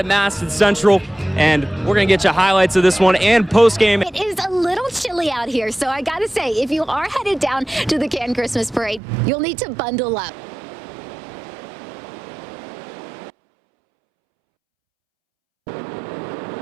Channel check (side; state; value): left; drops out; at 9.0 s